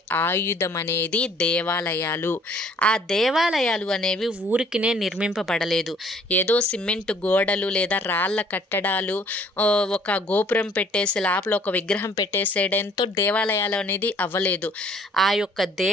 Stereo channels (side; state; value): both; normal; correlation 0.58